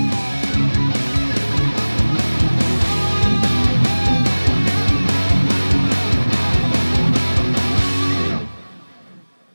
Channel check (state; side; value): inverted; both; correlation -1.00